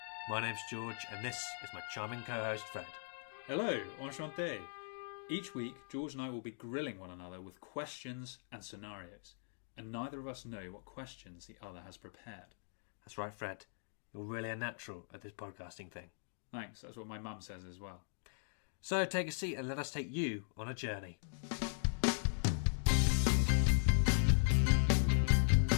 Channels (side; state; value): right; silent; digital silence